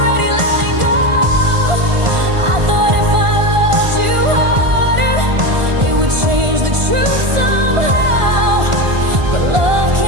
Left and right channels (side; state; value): left; late; 1.5 ms